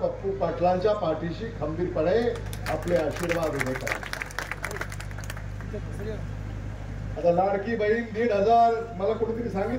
पाटलांच्या पाठीशी खंबीरपणे आपले आशीर्वाद उभे करा. आता लाडकी बहीण 1,500 मला कोणीतरी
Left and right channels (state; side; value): identical; both; correlation 1.00